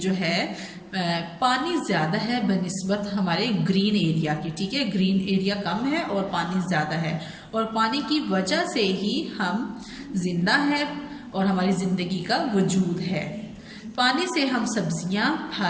है पानी ज़्यादा है बनिस्बत हमारे ग्रीन एरिया की, ठीक है। ग्रीन एरिया कम है और पानी ज़्यादा है, और पानी की वजह से ही हम जिंदा है और हमारी ज़िंदगी का वजूद है। पानी से हम सब्जियां,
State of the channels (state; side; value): identical; both; correlation 1.00